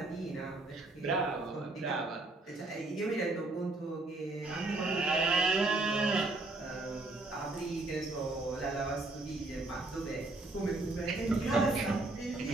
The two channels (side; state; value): left; quieter; 3.0 dB